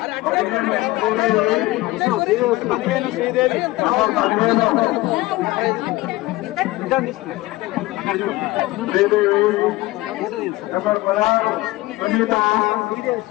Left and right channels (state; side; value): quieter; right; 19.2 dB